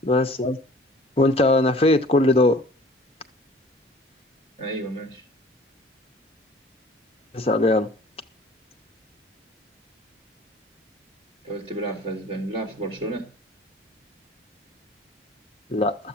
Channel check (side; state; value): both; normal; correlation 0.49